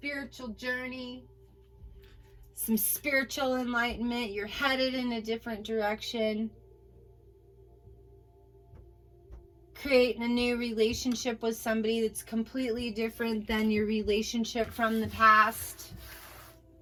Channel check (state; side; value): identical; both; correlation 1.00